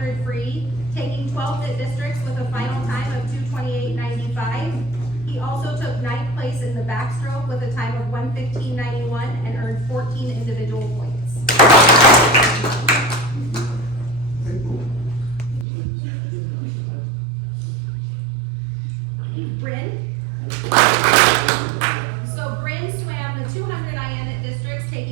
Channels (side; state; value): left; drops out; at 15.7 s